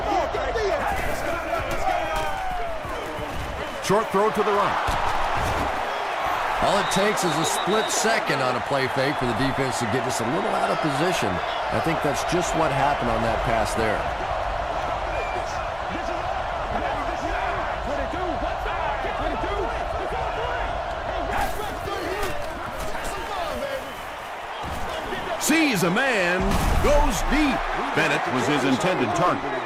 Short throw to the right. All it takes is a split second on a play fake for the defense to get just a little out of position. I think that's just what happened on that pass there. Sees a man, goes deep. Bennett was his intended target.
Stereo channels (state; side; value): identical; both; correlation 1.00